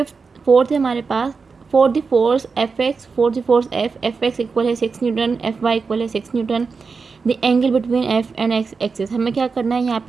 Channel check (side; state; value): left; quieter; 4.9 dB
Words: फोर्थ है हमारे पास, for the force F X, for the force F X equal है 6 न्यूटन, एफ वाई इक्वल है 6 newton, the angle between F and X axis. हमें क्या करना है, यहाँ